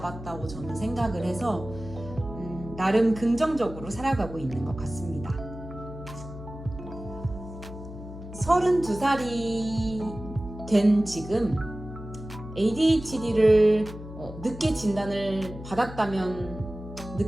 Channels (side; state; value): left; noise; hum, 12 dB below the sound